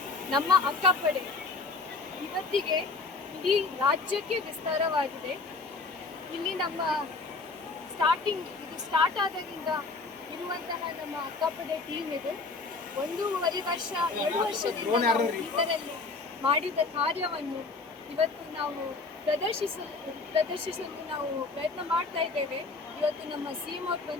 ನಮ್ಮ ಅಕ್ಕಪಡೆ ಇವತ್ತಿಗೆ ಇಡೀ ರಾಜ್ಯಕ್ಕೆ ವಿಸ್ತಾರವಾಗಿದೆ. ಇಲ್ಲಿ ನಮ್ಮ ಇದು ಸ್ಟಾರ್ಟ್ ಆದಾಗಿಂದ ಇರುವಂತಹ ನಮ್ಮ ಅಕ್ಕಪಡೆ ಟೀಮ್ ಇದು 1.5 ವರ್ಷ 2 ವರ್ಷದಿಂದ ನಾವು ಬೀದರಲ್ಲಿ ಮಾಡಿದ ಕಾರ್ಯವನ್ನು ಇವತ್ತು ನಾವು ಪ್ರದರ್ಶಿಸಲು ನಾವು ಪ್ರಯತ್ನ ಮಾಡ್ತಾ ಇದ್ದೇವೆ. ಇವತ್ತು ನಮ್ಮ CM ಅವರು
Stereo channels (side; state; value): right; quieter; 3.9 dB